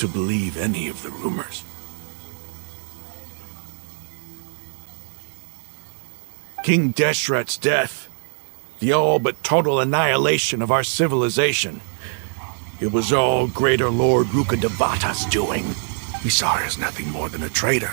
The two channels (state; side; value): silent; left; digital silence